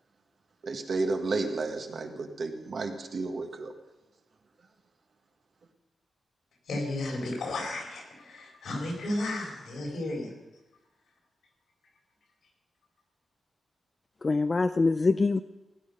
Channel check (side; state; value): both; normal; correlation 0.92